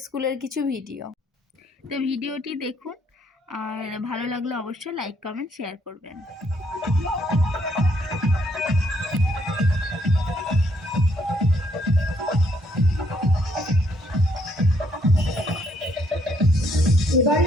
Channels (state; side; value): normal; both; correlation 0.70